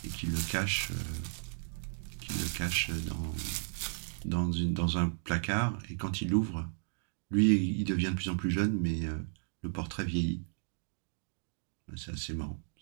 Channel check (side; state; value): left; silent; digital silence